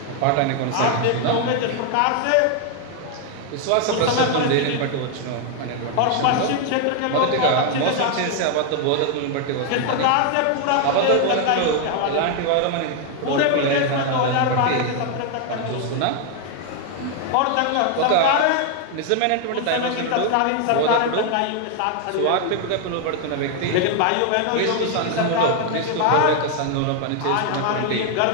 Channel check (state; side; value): different; both; correlation 0.01